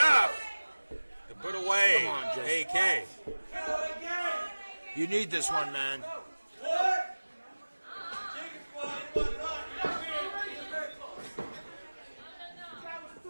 to put away AK. You need this one, man.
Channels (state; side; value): inverted; both; correlation -1.00